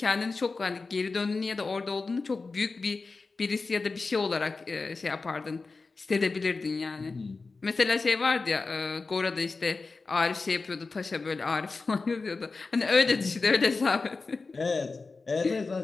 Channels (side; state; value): right; quieter; 4.0 dB